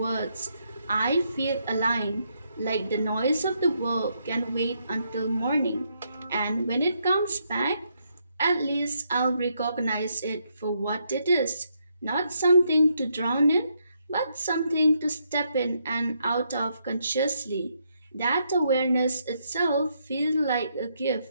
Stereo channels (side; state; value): both; inverted; correlation -0.77